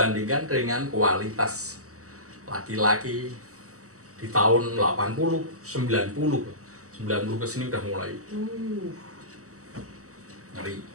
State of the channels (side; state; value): left; late; 0.66 ms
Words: dengan kualitas laki-laki di tahun 80, 90 ke sini udah mulai ngeri.